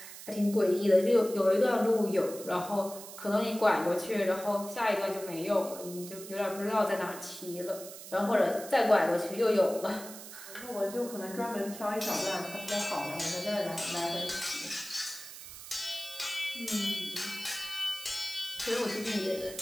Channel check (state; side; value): noise; right; hiss, 13 dB below the sound